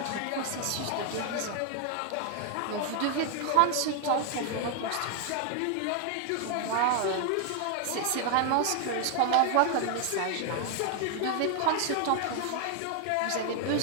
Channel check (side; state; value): both; different; correlation 0.00